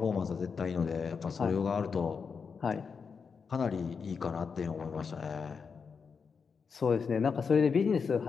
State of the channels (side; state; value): right; quieter; 5.7 dB